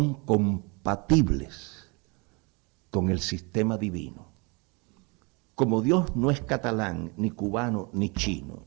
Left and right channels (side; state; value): left; quieter; 29.9 dB